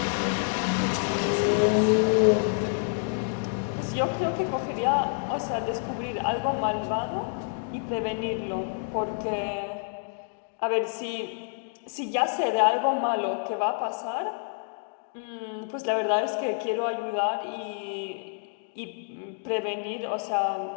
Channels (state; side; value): silent; right; digital silence